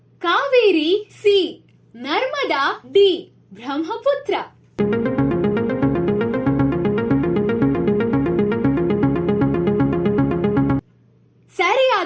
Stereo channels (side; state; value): both; identical; correlation 1.00